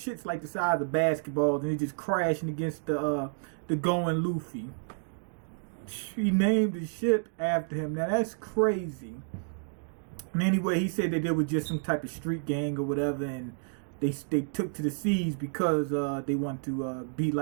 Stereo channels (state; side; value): silent; left; 58 dB below the other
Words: like the size of basketballs, and it's just crashing against the going Luffy. He named the ship after him. Now that's crazy. And anyway, he said that there was just some type of street gang or whatever, and they took to the seas because they want to be